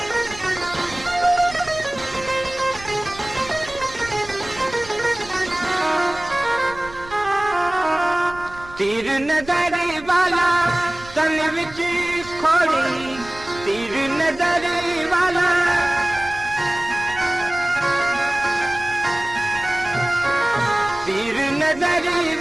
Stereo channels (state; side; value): noise; right; rumble, 19 dB below the sound